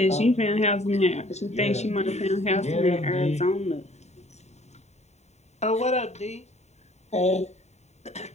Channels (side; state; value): right; late; 0.32 ms